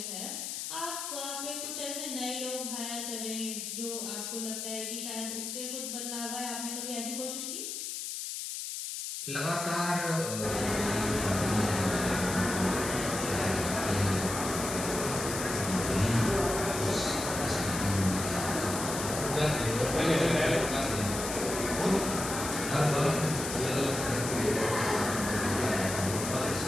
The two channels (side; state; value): left; noise; hiss, 5 dB below the sound